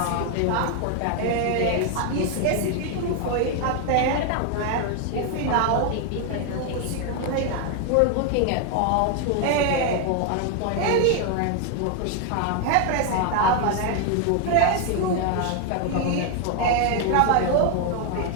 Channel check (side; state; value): both; different; correlation 0.01